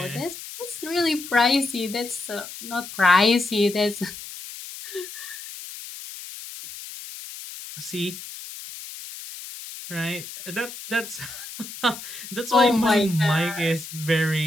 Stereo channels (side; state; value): left; noise; hiss, 12 dB below the sound